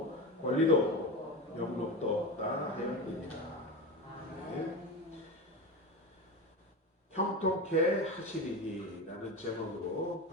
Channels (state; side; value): normal; both; correlation 0.23